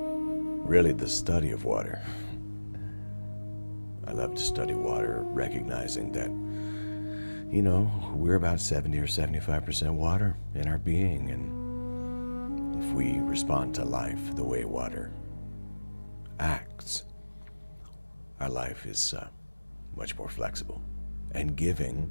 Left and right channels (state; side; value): inverted; both; correlation -1.00